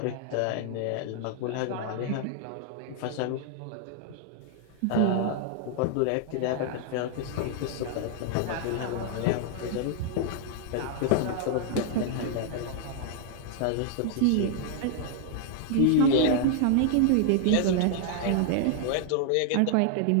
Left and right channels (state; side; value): different; both; correlation 0.00